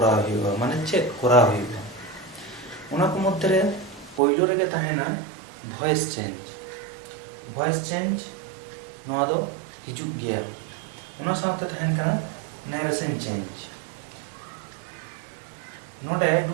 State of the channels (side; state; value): left; drops out; at 4.2 s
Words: हुआ माने चेक करा हुआ उना को मध्य रे पहिलो रे के ताहेना वॉइस चेंज नोआ दो हिजुग गया उना साथे ताहेन कना नरेशन चेंज नोटे